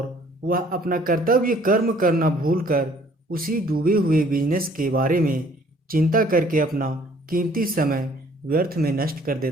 वह अपना कर्तव्य कर्म करना भूलकर उसी डूबे हुए बिजनेस के बारे में चिंता करके अपना कीमती समय व्यर्थ में नष्ट कर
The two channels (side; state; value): both; normal; correlation 0.58